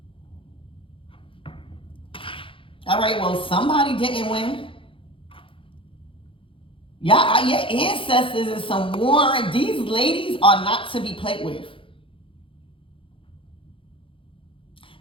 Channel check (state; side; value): late; right; 0.25 ms